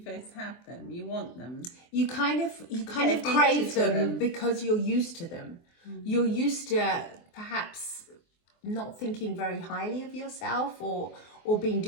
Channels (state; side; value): late; right; 24 ms